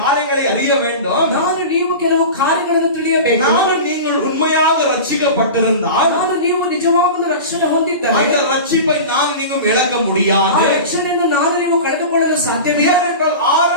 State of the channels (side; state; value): both; inverted; correlation -0.31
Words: காரியங்களை அறிய வேண்டும். ನೀವು ಕೆಲವು ಕಾರ್ಯಗಳನ್ನು ತಿಳಿಯಬೇಕು. நீங்கள் உண்மையாக ரட்சிக்கப்பட்டிருந்தால், ನೀವು ನಿಜವಾದ ರಕ್ಷಣೆ ಹೊಂದಿದ್ದರೆ அந்த ரட்சிப்பை நீங்களும் இழக்க முடியாது. ಆ ರಕ್ಷಣೆಯನ್ನು ನೀವು ಕಳೆದುಕೊಳ್ಳಲು ಸಾಧ್ಯವಿಲ್ಲ. ஏனென்றால்